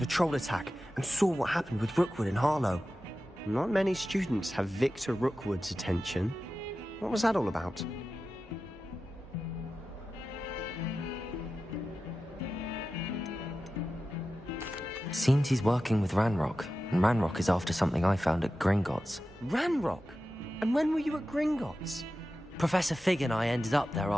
troll attack and saw what happened with Rookwood and Harlow. Not many students have Victor Rookwood's attention. What was that all about? Seems he's working with Ranrock, and Ranrock is after something I found at Gringotts. Ranrock? And when were you at Gringotts? Professor Fig and I ended up there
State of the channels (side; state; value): both; normal; correlation 0.93